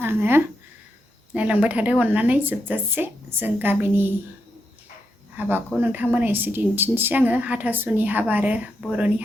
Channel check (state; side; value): normal; both; correlation 0.83